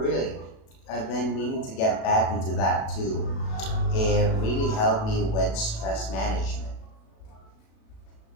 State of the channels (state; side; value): late; right; 37 ms